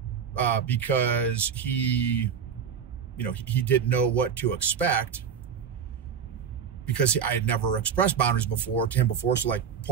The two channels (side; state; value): left; quieter; 7.2 dB